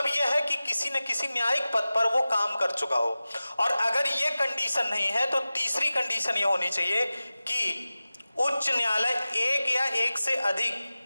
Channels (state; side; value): inverted; both; correlation -0.96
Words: यह है कि किसी न किसी न्यायिक पद पर वो काम कर चुका हो। और अगर ये कंडीशन नहीं है तो तीसरी कंडीशन ये होनी चाहिए कि उच्च न्यायालय एक या एक से अधिक